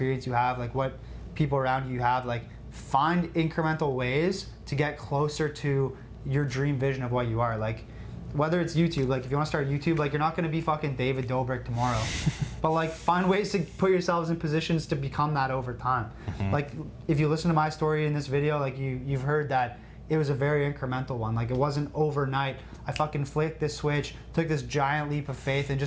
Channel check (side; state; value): both; identical; correlation 1.00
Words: you have, like what people around you have, like find incremental ways to get closer to your dream vision of what you are. Like, whether it's YouTube, like if you want to start YouTube, like you're not going to be fucking David Dobrik tomorrow, but like find ways to put yourselves in positions to become that over time. Like if you listen to my story in this video, like you've heard that it was a very incremental one. Like, it wasn't overnight. I fucking flicked this switch, took this giant leap of faith, and